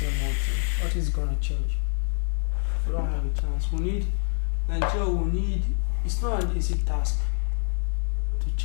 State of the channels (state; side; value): silent; right; digital silence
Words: What is gonna change? We don't have a chance. Nigeria. It's not an easy task to